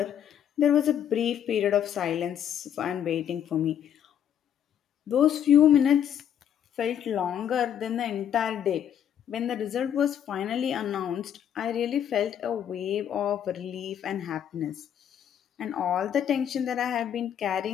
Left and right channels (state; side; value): quieter; right; 9.5 dB